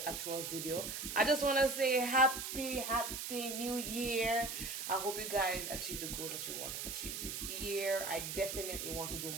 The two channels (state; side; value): noise; right; hiss, 5 dB below the sound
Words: actual video, I just want to say happy new year. I hope you guys achieve the goals that you want to achieve this year. I definitely want to do